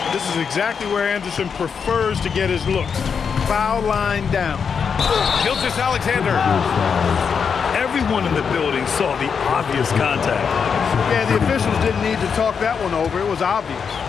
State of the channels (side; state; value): right; quieter; 6.3 dB